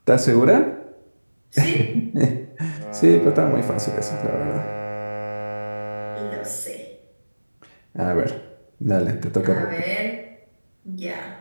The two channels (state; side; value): inverted; both; correlation -1.00